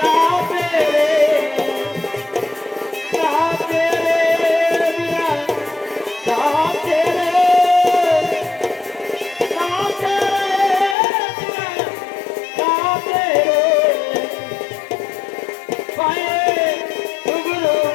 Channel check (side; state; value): right; drops out; at 11.0 s